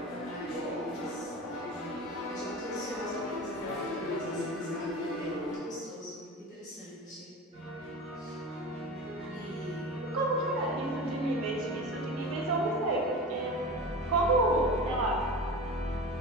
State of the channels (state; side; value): normal; both; correlation 0.31